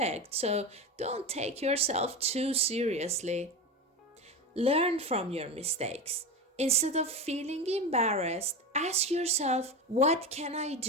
so don't take yourself too seriously. Learn from your mistakes. Instead of feeling embarrassed, ask yourself, what can I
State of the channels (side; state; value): both; normal; correlation 0.22